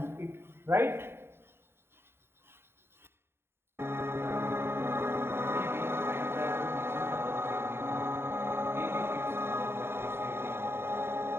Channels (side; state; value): left; late; 0.11 ms